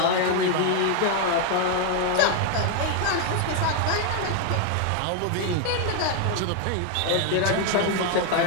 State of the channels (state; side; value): different; both; correlation 0.01